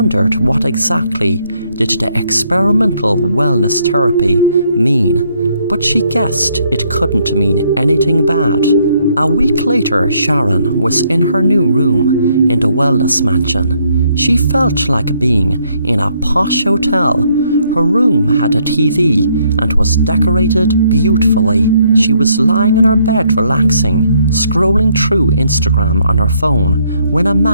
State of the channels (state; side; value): inverted; both; correlation -0.70